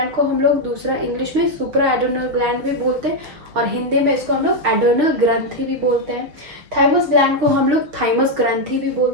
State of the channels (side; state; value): left; late; 6.6 ms